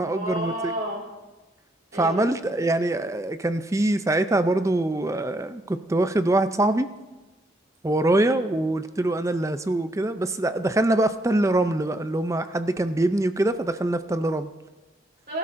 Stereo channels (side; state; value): both; normal; correlation 0.74